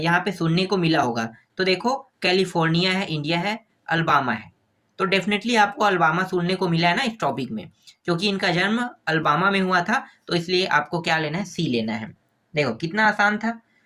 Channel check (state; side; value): identical; both; correlation 1.00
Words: पे सुनने को मिला होगा। तो देखो, कैलिफोर्निया है, इंडिया है, अल्बामा है। तो डेफिनेटली आपको अल्बामा सुनने को मिला है ना इस टॉपिक में, क्योंकि इनका जन्म अल्बामा में हुआ था। तो इसलिए आपको क्या लेना है, सी लेना है। देखो कितना आसान था।